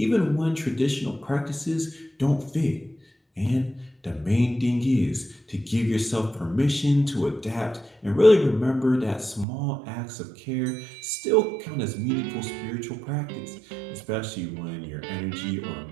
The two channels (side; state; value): left; drops out; at 9.5 s